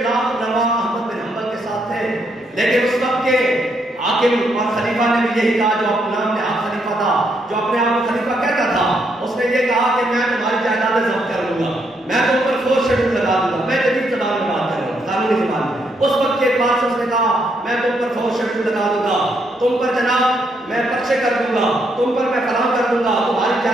لاکھ نوا احمد بن حنبل کے ساتھ تھے. لیکن اس وقت کے حاکم اور خلیفہ نے بھی یہی کہا, جو اپنے نام میں خلیفہ تھا, جو اپنے آپ کو خلیفہ کہتا تھا, اس نے یہ کہا کہ میں تمہاری جائیدادیں ضبط کر لوں گا, میں تم پر فورس شیڈول لگا دوں گا. میں جدید زبان میں بات کر رہا ہوں, قانونی زبان میں. اس وقت کے اعتبار سے اس نے کہا میں تم پر فورس شیڈول لگا دوں گا, تم پر جناب میں پرچے کر دوں گا, تم پر میں فلاں کر دوں گا, تمہاری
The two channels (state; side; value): normal; both; correlation 0.75